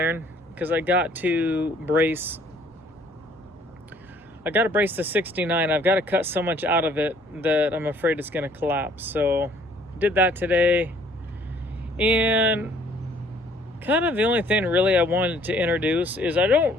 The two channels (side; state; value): both; normal; correlation 0.59